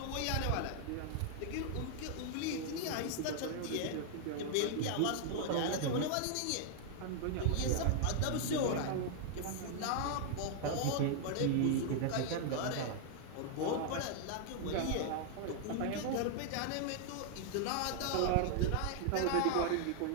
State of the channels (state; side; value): different; both; correlation 0.00